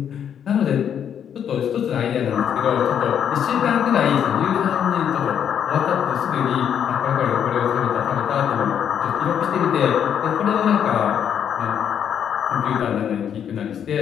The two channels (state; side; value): quieter; right; 8.7 dB